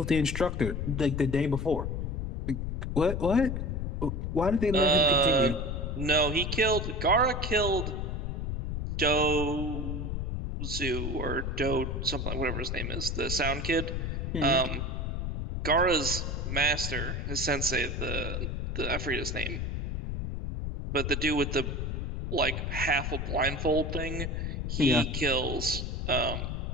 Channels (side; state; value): left; noise; rumble, 2 dB below the sound